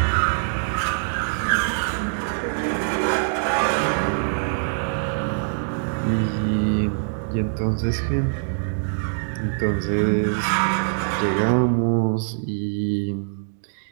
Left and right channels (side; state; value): left; silent; digital silence